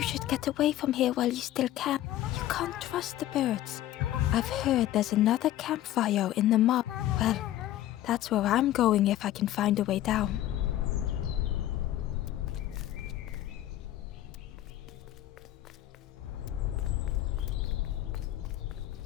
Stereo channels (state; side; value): quieter; right; 13.5 dB